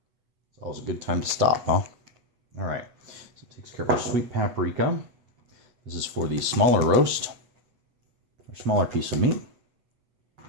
It's always a good time to stop, huh? All right, so it takes care of our sweet paprika. This is for the smaller roast, or smaller piece of meat.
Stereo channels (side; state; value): left; late; 8.2 ms